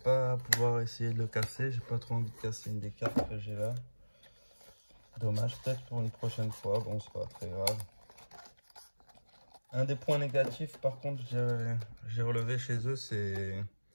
pouvoir essayer de le casser. J'ai pas trop envie de casser une des cartes que j'ai là. Dommage, peut-être pour une prochaine fois. Bon, c'est pas très grave. Un des points négatifs, par contre, j'ai relevé chez eux, c'est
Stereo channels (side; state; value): both; inverted; correlation -1.00